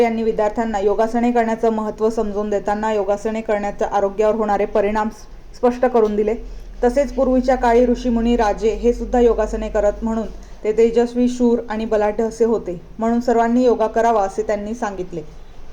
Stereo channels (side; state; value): both; identical; correlation 1.00